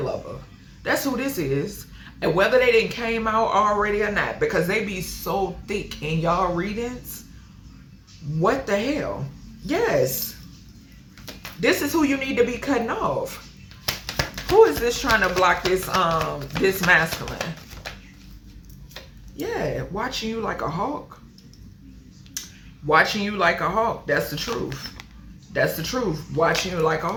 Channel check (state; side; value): identical; both; correlation 1.00